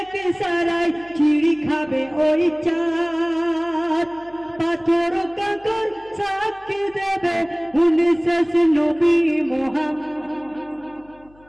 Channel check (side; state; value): left; noise; hum, 28 dB below the sound